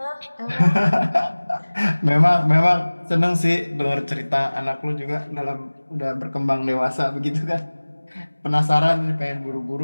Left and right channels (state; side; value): inverted; both; correlation -1.00